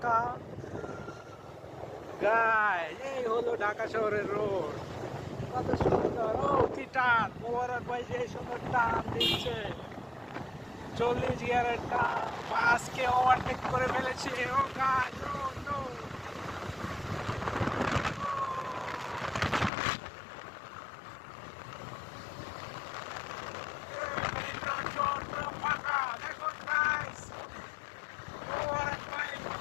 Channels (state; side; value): drops out; right; at 19.7 s